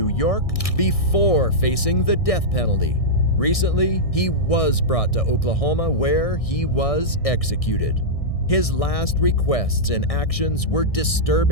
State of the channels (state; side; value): late; right; 1.6 ms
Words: York before facing the death penalty. Recently, he was brought to Oklahoma where he was executed. His last requests and actions were